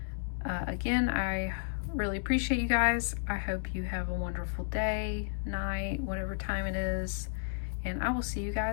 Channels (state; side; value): silent; right; digital silence